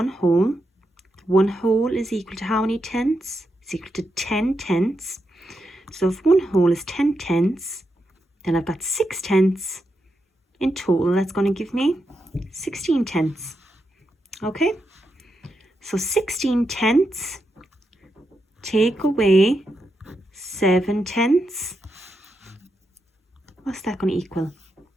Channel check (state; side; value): normal; both; correlation 0.85